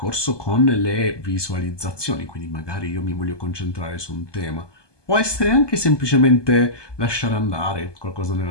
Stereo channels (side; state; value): right; late; 1.2 ms